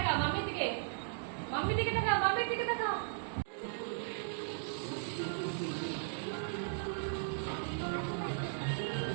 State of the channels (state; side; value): silent; left; digital silence